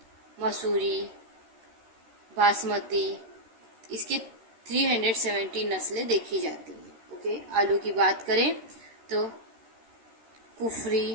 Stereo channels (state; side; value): late; left; 13 ms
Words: मसूरी, बासमती, इसके 370 नस्लें देखी जाती हैं। ओके, आलू की बात करें तो